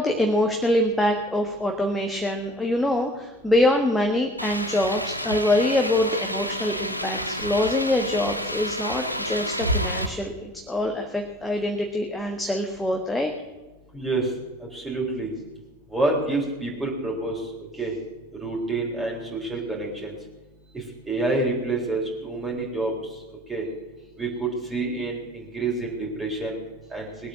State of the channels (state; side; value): normal; both; correlation 0.50